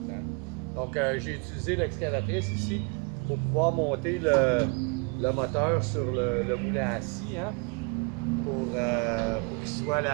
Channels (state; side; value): quieter; left; 33.1 dB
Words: Hein? Donc, j'ai utilisé l'excavatrice ici pour pouvoir monter le moteur sur le moulin à scie. Hein? Pour qu'il soit